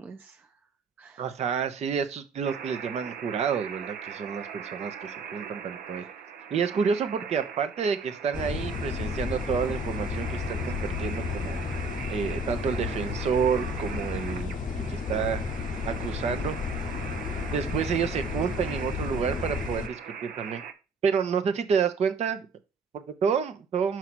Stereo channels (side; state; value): left; quieter; 3.7 dB